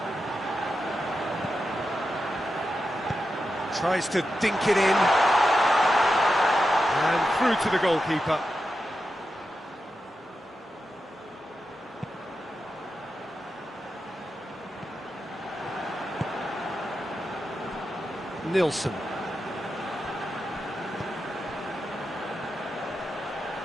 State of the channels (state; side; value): normal; both; correlation 0.89